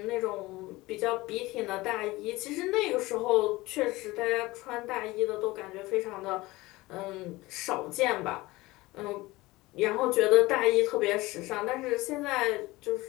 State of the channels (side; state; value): right; quieter; 20.2 dB